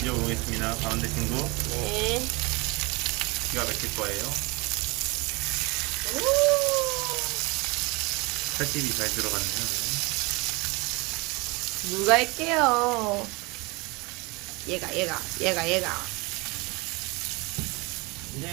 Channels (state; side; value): quieter; left; 26.2 dB